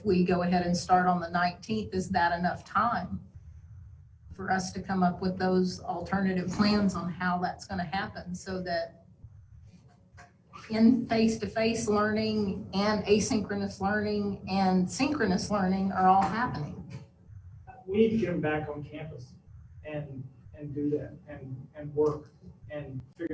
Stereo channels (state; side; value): identical; both; correlation 1.00